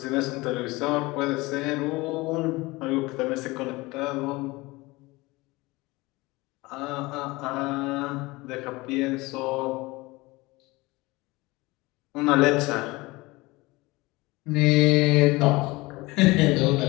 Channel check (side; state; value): right; quieter; 22.1 dB